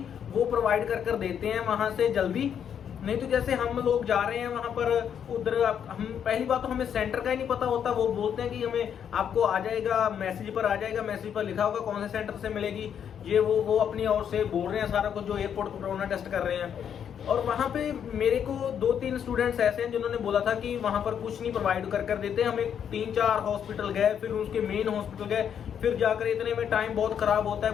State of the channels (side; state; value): right; quieter; 8.4 dB